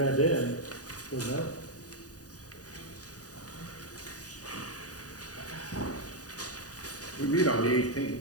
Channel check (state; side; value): late; right; 0.67 ms